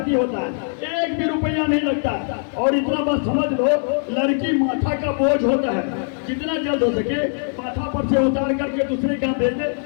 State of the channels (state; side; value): silent; right; 64 dB below the other